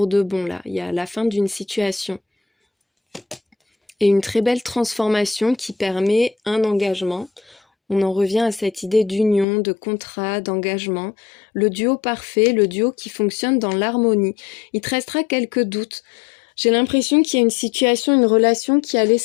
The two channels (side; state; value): right; drops out; at 9.5 s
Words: de bon là. Il y a la fin d'une situation. Et une très belle transformation qui permet un engagement. On en revient à cette idée d'union, de contrat, d'engagement. Le duo parfait, le duo qui fonctionne dans l'harmonie. Il te restera quelques doutes. J'ai l'impression qu'il y a une situation, une relation qui a